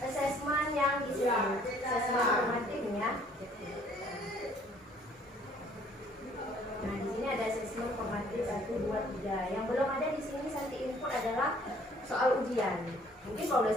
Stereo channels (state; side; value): normal; both; correlation 0.59